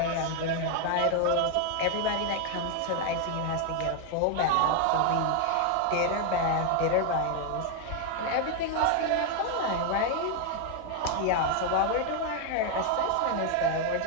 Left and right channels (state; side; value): different; both; correlation 0.01